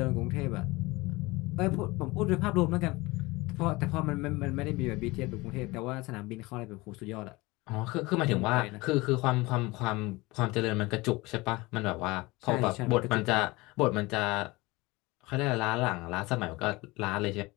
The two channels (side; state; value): right; quieter; 22.4 dB